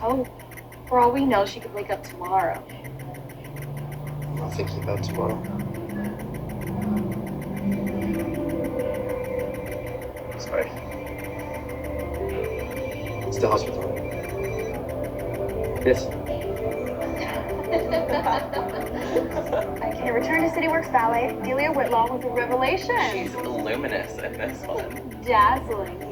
For all we know, she could wake up tomorrow. I'm not thinking about tomorrow. Sorry. It's the hospital. Yes. Okay, Return to City Works Ballet. Delia Whitlaw was a revelation. She's luminous in this one. Dazzling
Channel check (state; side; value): identical; both; correlation 1.00